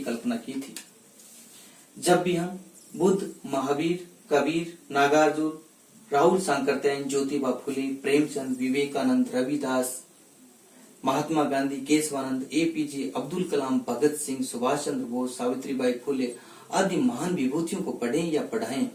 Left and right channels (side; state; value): both; identical; correlation 1.00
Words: की थी। जब भी हम बुद्ध, महावीर, कबीर, नागार्जुन, राहुल सांकरतैन, ज्योतिबा फुले, प्रेमचंद, विवेकानंद, रविदास, महात्मा गांधी, केशवानंद, एपीजे अब्दुल कलाम, भगत सिंह, सुभाष चंद्र बोस, सावित्रीबाई फुले आदि महान विभूतियों को पढ़ें या पढ़ाएं